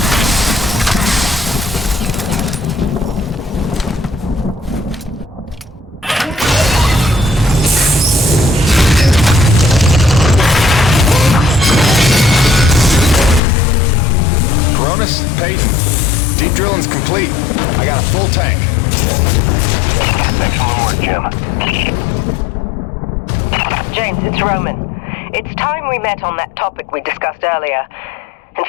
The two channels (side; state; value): right; drops out; at 13.4 s